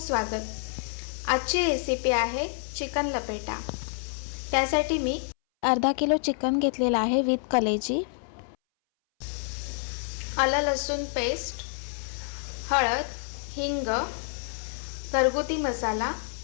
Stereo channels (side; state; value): right; silent; 59 dB below the other